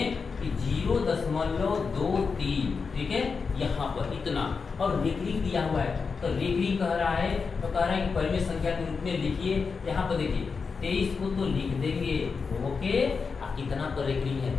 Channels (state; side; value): quieter; right; 5.1 dB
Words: कि 0.23, ठीक है, यहाँ पर इतना, और रेखरी दिया हुआ है तो रेखरी कह रहा है, तो कह रहा है कि परिमेय संख्या के रूप में लिखिए। यहाँ पर देखिए 23 को तो लिख देंगे, ओके, कितना पर रेखरी है,